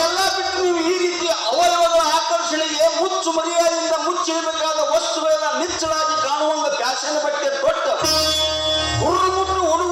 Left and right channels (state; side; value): identical; both; correlation 1.00